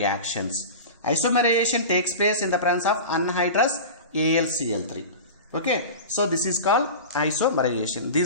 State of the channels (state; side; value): inverted; both; correlation -0.31